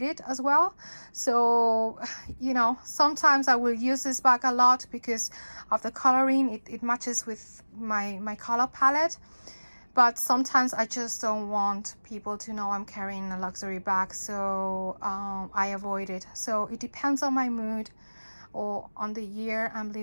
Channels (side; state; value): both; inverted; correlation -1.00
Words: it as well. So, you know, sometimes I will use this bag a lot because of the coloring. It matches with my color palette. But sometimes I just don't want people to know I'm carrying a luxury bag, so I avoid it. So it depends on my mood or on the year I'm